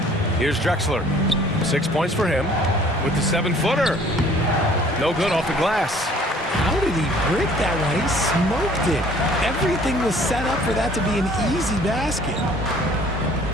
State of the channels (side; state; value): both; normal; correlation 0.55